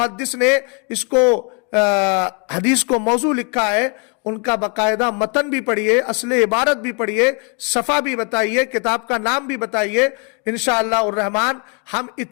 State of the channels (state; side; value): quieter; right; 35.2 dB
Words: نے اس کو حدیث کو موضوع لکھا ہے ان کا باقاعدہ متن بھی پڑھیے، اصل عبارت بھی پڑھیے، صفحہ بھی بتائیے، کتاب کا نام بھی بتائیے۔ انشاءاللہ الرحمن ہم